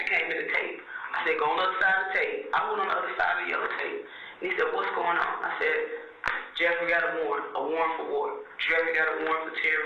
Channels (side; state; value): both; identical; correlation 1.00